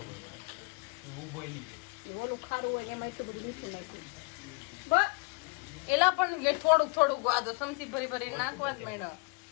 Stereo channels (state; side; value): quieter; right; 31.2 dB